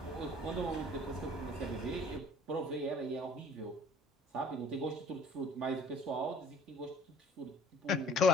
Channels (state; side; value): normal; both; correlation 0.52